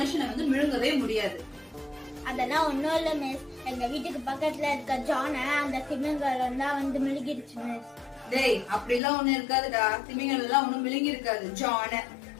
வந்து விழுங்கவே முடியாது. அதெல்லாம் ஒண்ணும் இல்ல மிஸ். எங்க வீட்டுக்கு பக்கத்துல இருக்க ஜான அந்த திமிங்கலம் தான் வந்து மிழுகிடுச்சு மிஸ். டேய், அப்படிலாம் ஒண்ணு இருக்காதுடா. திமிங்கலம் எல்லாம் ஒண்ணும் விழுங்கி இருக்காது, ஜான.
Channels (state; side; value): drops out; right; at 9.0 s